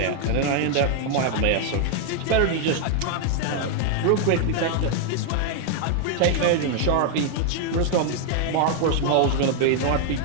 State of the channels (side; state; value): both; different; correlation 0.00